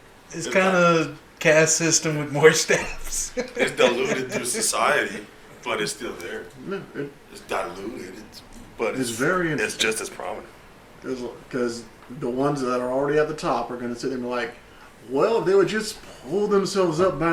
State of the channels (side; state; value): both; identical; correlation 1.00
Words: kind of caste system with more steps. It's diluted through society, but it's still there. no, It's diluted, but it's very it's interesting. just as prominent. Because the ones that are already at the top are going to sit there and be like, well, if they would just pull themselves up